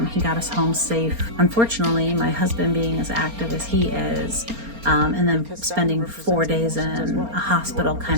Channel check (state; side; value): late; left; 4.3 ms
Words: He got us home safe. Unfortunately, my husband being as active as he is, and then spending 4 days in a hospital